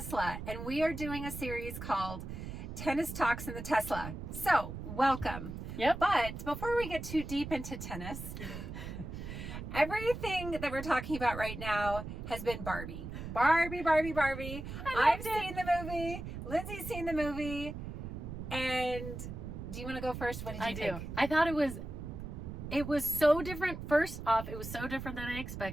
and we are doing a series called Tennis Talks in the Tesla. So, welcome. Yep. But before we get too deep into tennis, everything that we're talking about right now has been Barbie. Barbie. I've seen the movie. Lindsey's seen the movie. And do you want to go first? What did you think? I thought it was so different. First off, it was so different than I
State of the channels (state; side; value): noise; right; rumble, 8 dB below the sound